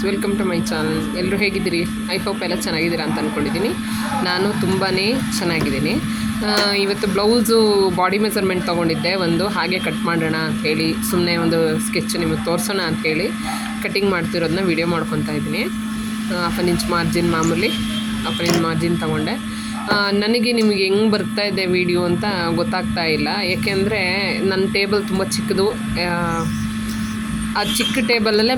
welcome to my channel. ಎಲ್ಲರೂ ಹೇಗಿದ್ದೀರಿ? ಐ ಹೋಪ್ ಎಲ್ಲ ಚೆನ್ನಾಗಿದ್ದೀರಾ ಅಂತ ಅಂದ್ಕೊಂಡಿದ್ದೀನಿ. ನಾನು ತುಂಬಾ ಚೆನ್ನಾಗಿದ್ದೀನಿ. ಇವತ್ತು ಬ್ಲೌಸು ಬಾಡಿ ಮೆಜರ್ಮೆಂಟ್ ತೊಗೊಂಡಿದ್ದೆ ಒಂದು, ಹಾಗೆ ಕಟ್ ಮಾಡೋಣ ಅಂಥೇಳಿ, ಸುಮ್ಮನೆ ಒಂದು ಸ್ಕೆಚ್ ನಿಮಗೆ ತೋರಿಸೋಣ ಅಂಥೇಳಿ ಕಟ್ಟಿಂಗ್ ಮಾಡ್ತಿರೋದನ್ನ ವೀಡಿಯೋ ಮಾಡ್ಕೊತಾ ಇದ್ದೀನಿ. 1 ಇಂಚ್ ಮಾರ್ಜಿನ್, ಮಾಮೂಲಿ 1 ಇಂಚ್ ಮಾರ್ಜಿನ್ ತೊಗೊಂಡೆ. ನನಗೆ ನಿಮಗೆ ಹೆಂಗೆ ಬರ್ತಾ ಇದೆ ವೀಡಿಯೋ ಅಂತ ಗೊತ್ತಾಗ್ತಾ ಇಲ್ಲ, ಏಕೆಂದರೆ ನನ್ನ ಟೇಬಲ್ ತುಂಬ ಚಿಕ್ಕದು. ಆ ಚಿಕ್ಕ ಟೇಬಲಲ್ಲೇ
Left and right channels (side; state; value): both; identical; correlation 1.00